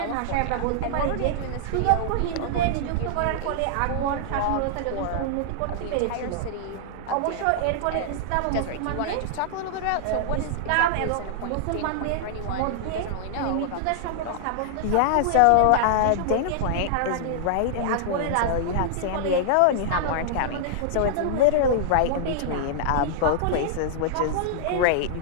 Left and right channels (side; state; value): both; different; correlation -0.01